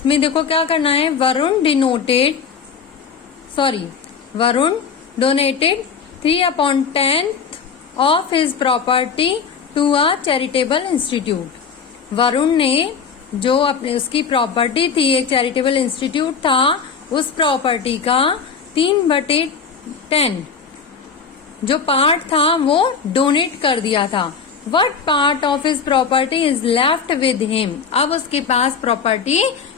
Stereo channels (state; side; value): quieter; right; 6.1 dB